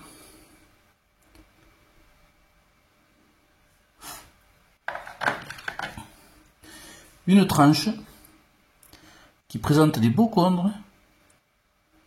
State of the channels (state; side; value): identical; both; correlation 1.00